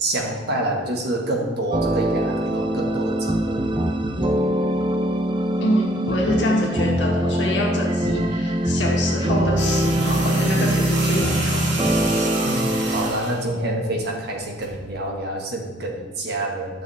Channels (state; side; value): normal; both; correlation 0.62